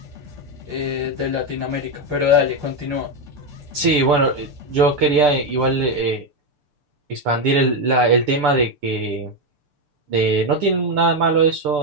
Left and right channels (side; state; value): left; late; 6.8 ms